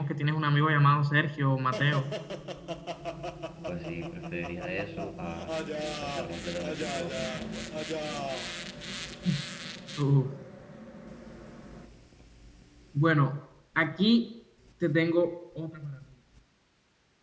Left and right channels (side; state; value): both; identical; correlation 1.00